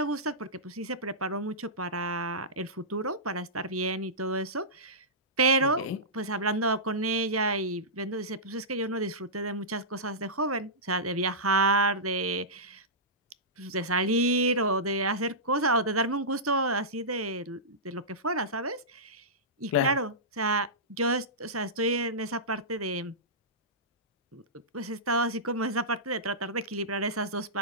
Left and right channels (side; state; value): both; normal; correlation -0.16